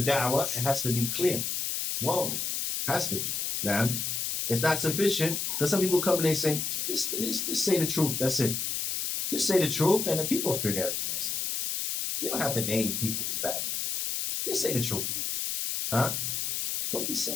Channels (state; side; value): noise; left; hiss, 1 dB below the sound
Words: da'wah, it has to be clear. Well, it has to be. Na'am. It's not sufficient. Because some people come and they say, just say the truth. That's it. Just say the truth and the people figure everything else out. You don't have to name people who's bad. Just say the truth. Huh? What are you